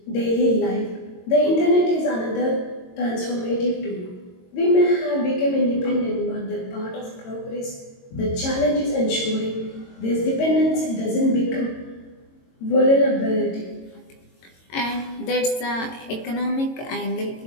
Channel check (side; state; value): right; late; 22 ms